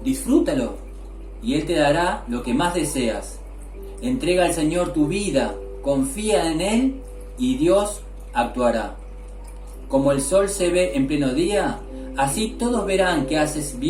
disfrútalo, y Él te dará lo que más deseas. Entrega al Señor tu vida, confía en Él y Dios actuará. Como el sol se ve en pleno día, así todos verán que haces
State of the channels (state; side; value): identical; both; correlation 1.00